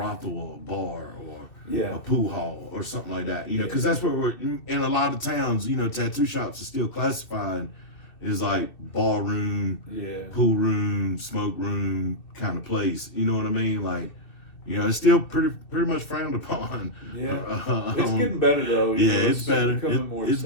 or a bar or a pool hall or something like that. You know, because that's where we're in a lot of towns. You know, tattoo shops are still classified as like ballroom, pool room, smoke room kind of place. You know what I mean? Like. You know, it's still pretty much frowned upon. Yeah, it's getting better though. It's better. It's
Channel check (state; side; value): late; right; 2.6 ms